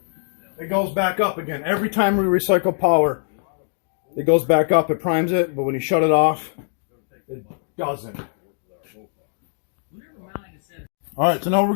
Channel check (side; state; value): right; silent; digital silence